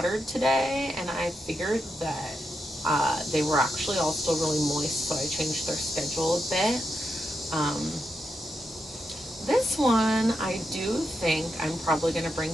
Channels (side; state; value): both; normal; correlation 0.85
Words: today, and I figured that they were actually all still really moist, so I changed their schedule a bit. This one, I do think I'm probably going to